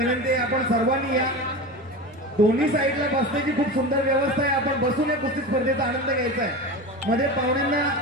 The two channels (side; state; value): both; normal; correlation 0.27